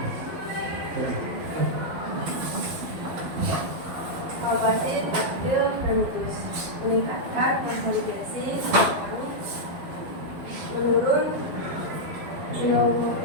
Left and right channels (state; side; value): late; left; 12 ms